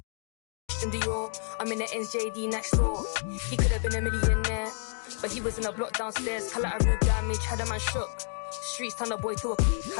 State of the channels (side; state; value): right; silent; 58 dB below the other